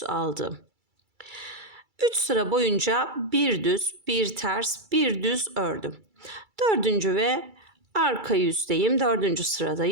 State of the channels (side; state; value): left; late; 2.3 ms